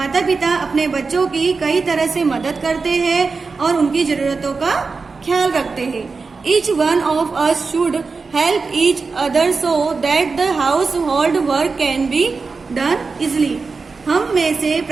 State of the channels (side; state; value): left; quieter; 4.4 dB